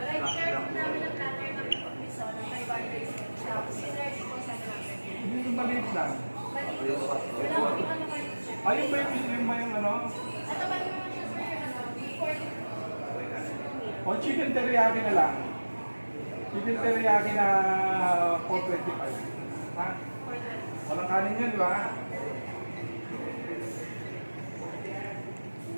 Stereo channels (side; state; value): both; inverted; correlation -1.00